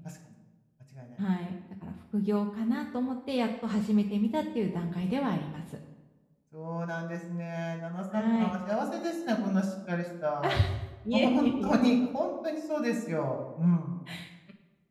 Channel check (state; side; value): identical; both; correlation 1.00